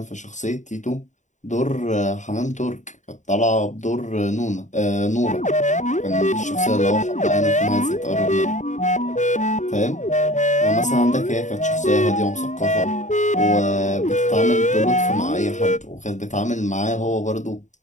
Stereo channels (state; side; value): late; right; 0.35 ms